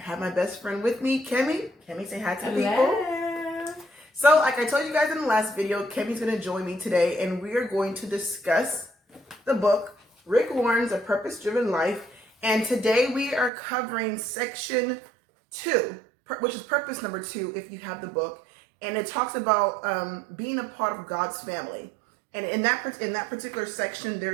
my best friend with me, Kemi. Kemi, say hi to the people. So, like I told you guys in the last video, Kemi's going to join me today, and we are going to discuss the book, Rick Warren's A Purpose-Driven Life, and today we are covering section 2, which is purpose number 2 if you have the book, and it talks about being a part of God's family. And in that particular section,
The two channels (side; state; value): left; drops out; at 13.5 s